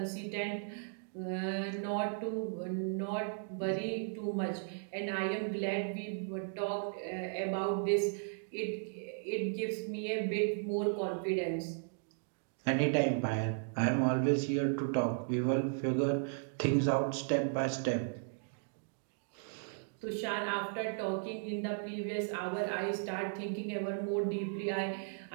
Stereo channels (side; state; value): left; silent; digital silence